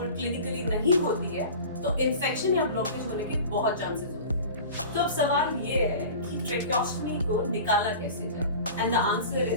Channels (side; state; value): both; inverted; correlation -0.37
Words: क्लिनिकली नहीं होती है तो इन्फेक्शन या ब्लॉकेज होने के बहुत चांसेस होते हैं। तो अब सवाल ये है कि ट्रेकियोस्टमी को निकाला कैसे जाए? And the answer